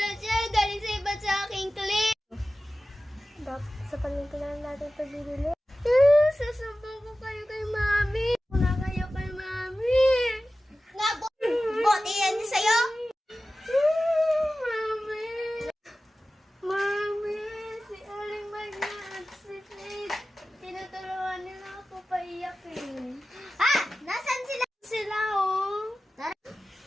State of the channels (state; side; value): normal; both; correlation 0.95